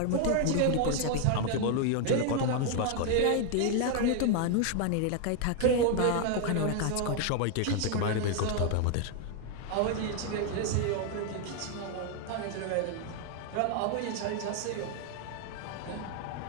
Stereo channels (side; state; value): both; different; correlation 0.00